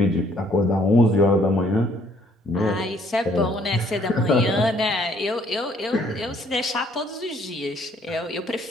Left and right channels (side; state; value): both; normal; correlation 0.64